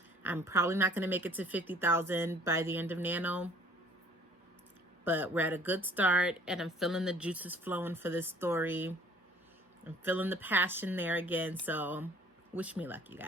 I'm probably not gonna make it to 50,000 by the end of Nano, but we're at a good start, and I'm feeling the juices flowing for this story. I'm feeling the passion there again. So wish me luck, you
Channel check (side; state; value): both; normal; correlation 0.54